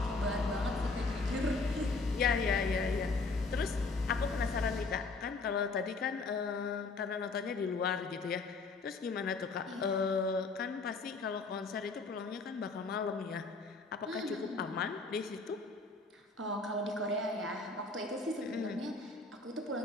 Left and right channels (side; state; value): right; quieter; 3.8 dB